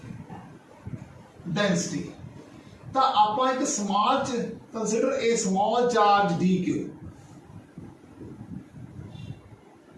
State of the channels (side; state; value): both; identical; correlation 1.00